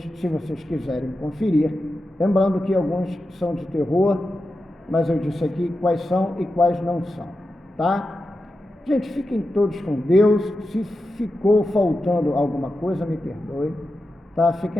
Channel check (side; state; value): both; normal; correlation 0.90